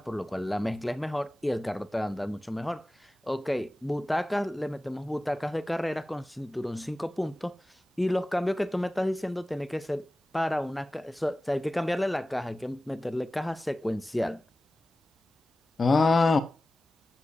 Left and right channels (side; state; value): both; normal; correlation 0.96